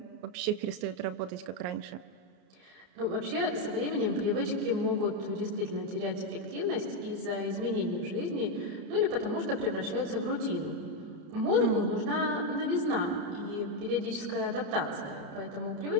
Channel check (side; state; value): left; late; 33 ms